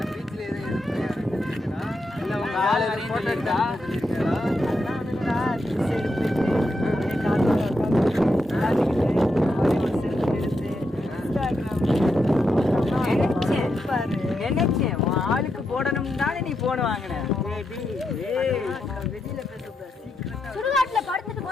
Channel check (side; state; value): both; normal; correlation 0.84